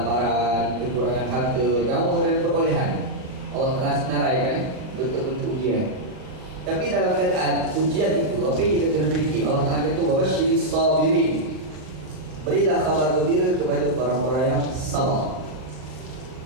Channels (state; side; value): late; left; 39 ms